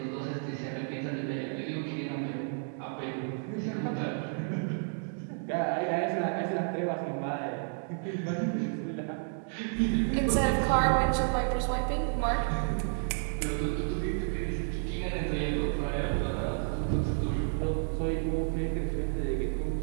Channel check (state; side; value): silent; left; 57 dB below the other